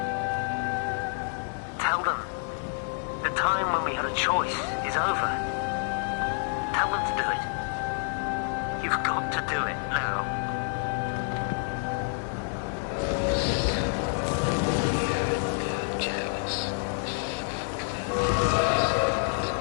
Tell them the time when we had a choice is over. Tell them to do it. You've got to do it now.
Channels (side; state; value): right; silent; 59 dB below the other